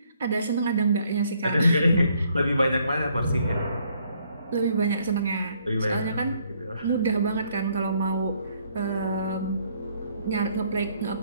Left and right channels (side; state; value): both; inverted; correlation -0.68